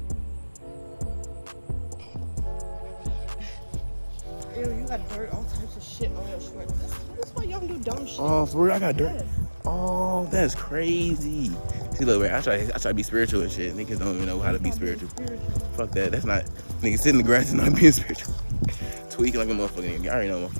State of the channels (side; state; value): both; inverted; correlation -1.00